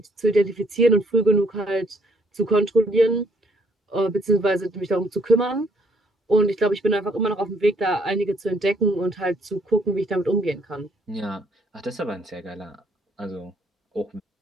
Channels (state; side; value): normal; both; correlation 0.67